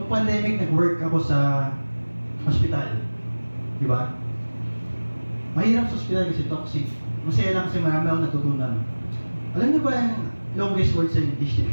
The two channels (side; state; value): both; inverted; correlation -1.00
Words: Noong pandemic, nag-work ako sa hospital. Diba? Mahirap sa hospital kasi toxic. Masaya lang kasi marami akong natutunan. Alam niyo ba yung longest word sa English